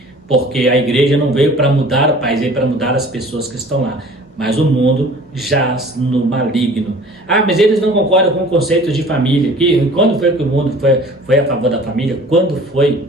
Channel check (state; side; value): normal; both; correlation 0.47